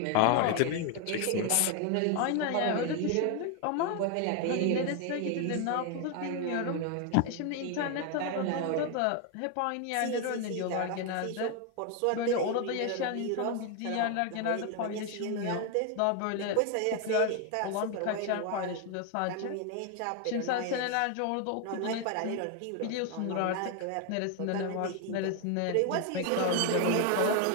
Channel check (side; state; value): both; different; correlation 0.01